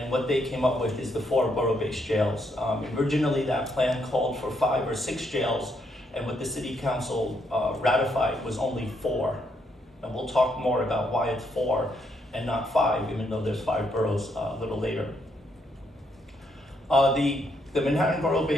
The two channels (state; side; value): normal; both; correlation 0.75